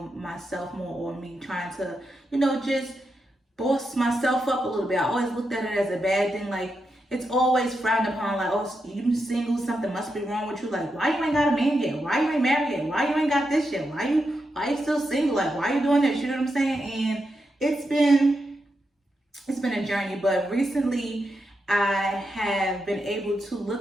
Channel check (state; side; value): normal; both; correlation 0.85